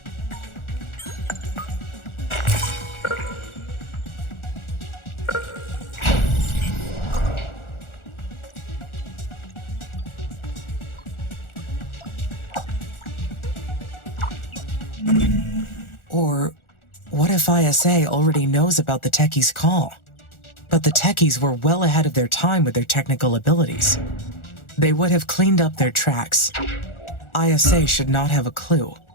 Or what if ISA already knows about the techie's call, But the techies were well ahead of their time with their technical abilities. They would have cleaned up their tracks. ISA should not have a clue.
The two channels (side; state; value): right; late; 1.4 ms